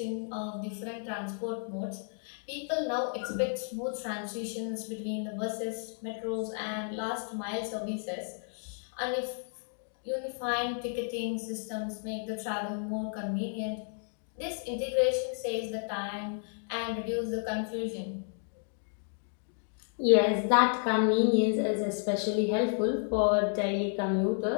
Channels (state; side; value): silent; right; 56 dB below the other